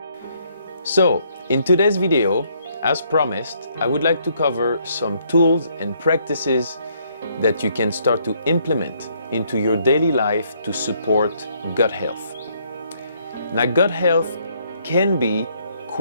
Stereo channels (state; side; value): inverted; both; correlation -0.69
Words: So, in today's video, as promised, I would like to cover some tools and practices that you can start to implement into your daily life to support gut health. Now, gut health can be